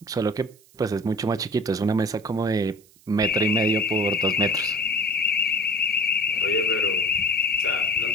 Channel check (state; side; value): noise; right; hiss, 28 dB below the sound